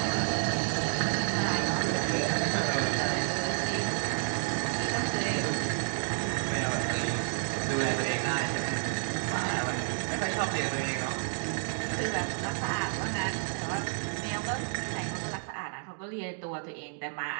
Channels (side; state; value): left; silent; digital silence